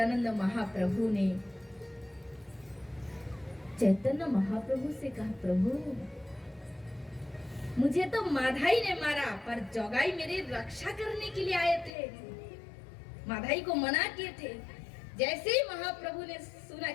महाप्रभु ने चैतन्य महाप्रभु से कहा, प्रभु मुझे तो माधाई ने मारा, पर जोगाई मेरी रक्षा करने के लिए आए थे। माधाई को मना किए थे। जैसे ही महाप्रभु ने सुना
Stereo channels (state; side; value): drops out; right; at 11.9 s